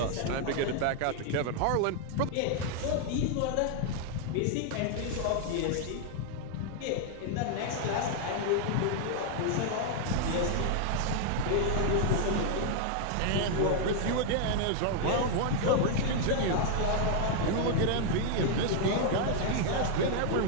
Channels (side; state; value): both; different; correlation 0.00